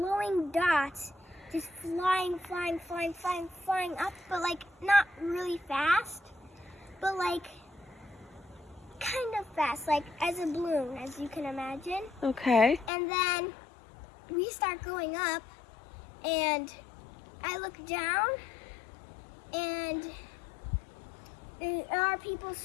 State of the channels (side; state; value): right; drops out; at 12.9 s